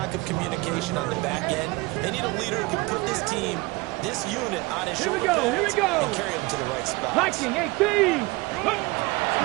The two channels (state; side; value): quieter; left; 23.4 dB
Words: of communication on the back end. They need a leader who can put this team, this unit, on his shoulder pads and carry them to the right spot. Liking 18. Richardson